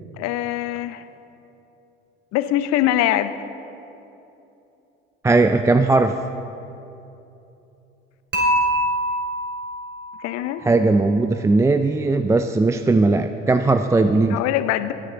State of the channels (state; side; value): normal; both; correlation 0.60